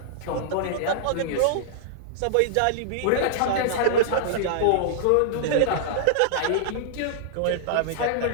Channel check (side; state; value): both; different; correlation -0.01